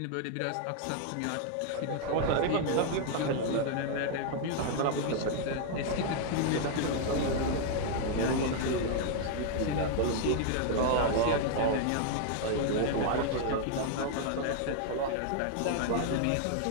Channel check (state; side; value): different; both; correlation 0.00